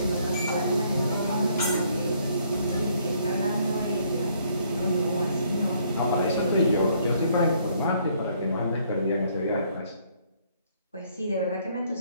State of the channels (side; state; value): both; inverted; correlation -0.66